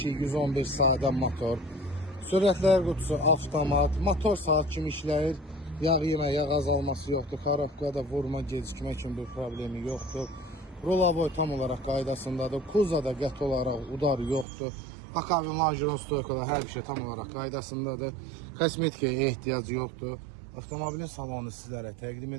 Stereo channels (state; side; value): drops out; left; at 14.5 s